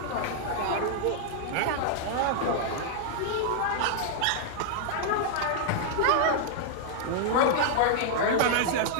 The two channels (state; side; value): different; both; correlation -0.01